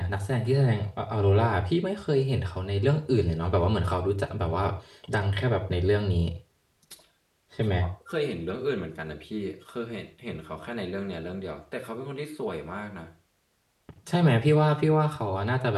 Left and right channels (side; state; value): both; identical; correlation 1.00